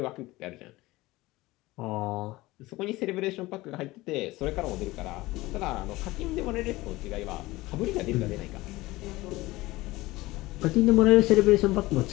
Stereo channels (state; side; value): quieter; right; 19.5 dB